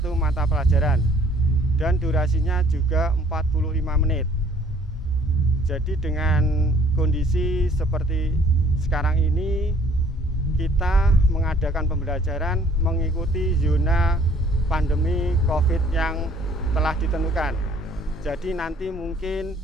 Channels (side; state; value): both; normal; correlation 0.57